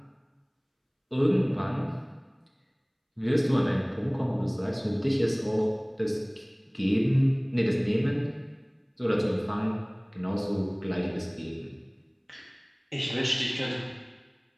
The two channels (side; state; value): both; identical; correlation 1.00